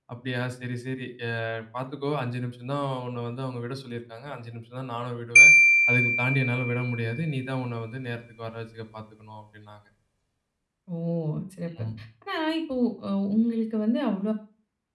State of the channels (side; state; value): both; identical; correlation 1.00